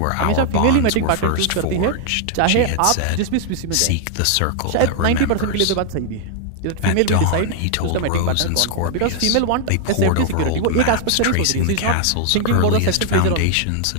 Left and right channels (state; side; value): different; both; correlation 0.00